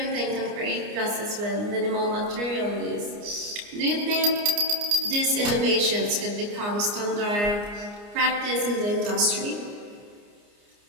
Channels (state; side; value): late; left; 29 ms